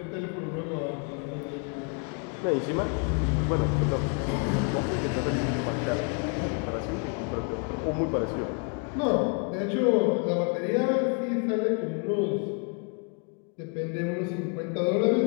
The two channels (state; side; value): quieter; right; 37.2 dB